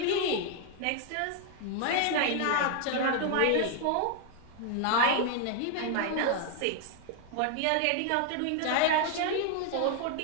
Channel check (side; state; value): both; different; correlation 0.00